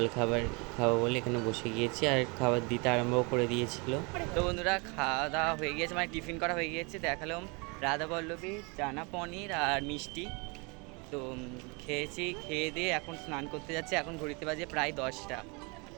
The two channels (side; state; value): left; quieter; 30.4 dB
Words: খাবো বলে এখানে বসে গিয়েছি, আর খাবার দিতে আরম্ভ করে দিয়েছিল। তো বন্ধুরা খাওয়া দাওয়া হয়ে গিয়েছে, টিফিন করা হয়ে গিয়েছে। দেখালাম রাধা বল্লভী, চানা পনির আর মিষ্টি। তো খেয়েছি, খেয়ে দিয়ে এখন স্নান করতে যাচ্ছি। এখন ঘড়িতে বাজে প্রায় 10টা,